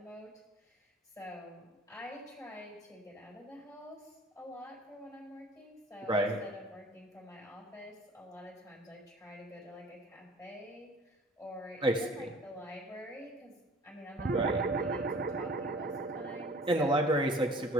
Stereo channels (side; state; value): both; normal; correlation 0.49